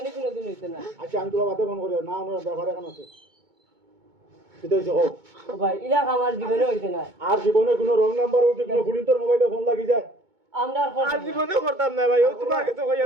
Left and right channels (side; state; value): left; late; 2.2 ms